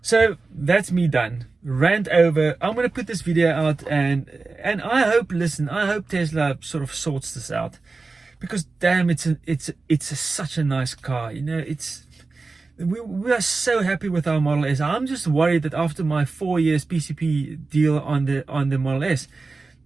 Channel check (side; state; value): left; quieter; 3.9 dB